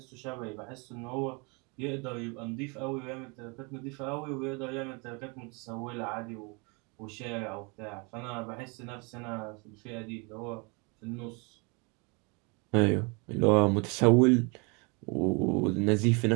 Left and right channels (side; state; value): left; quieter; 31.0 dB